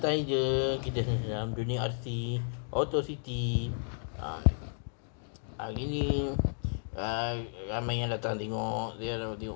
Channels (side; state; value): right; silent; digital silence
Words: je. Kita dalam dunia RC Auto City. uh, Hari ni uh, ramai yang datang tengok. Dia